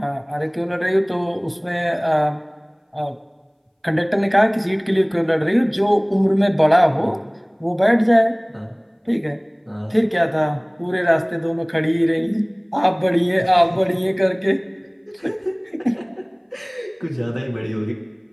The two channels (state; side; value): identical; both; correlation 1.00